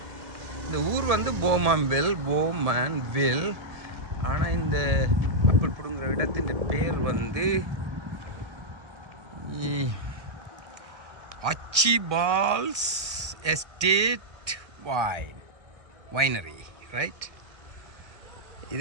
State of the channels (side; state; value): left; late; 1.5 ms